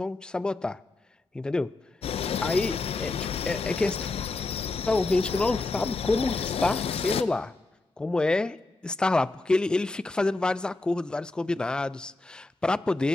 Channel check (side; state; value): right; quieter; 3.1 dB